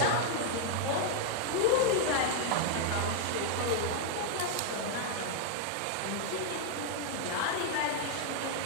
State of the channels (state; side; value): different; both; correlation 0.00